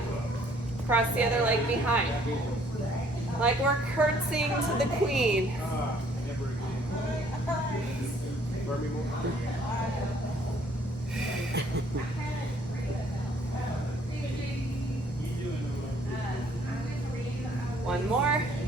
Cross the other leg behind. Like we're curtsying to the queen. One more.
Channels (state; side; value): normal; both; correlation 0.61